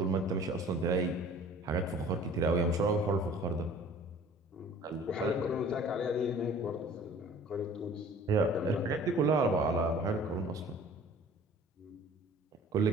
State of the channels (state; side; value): normal; both; correlation 0.48